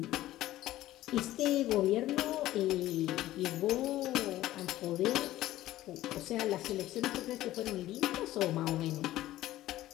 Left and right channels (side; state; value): right; quieter; 15.1 dB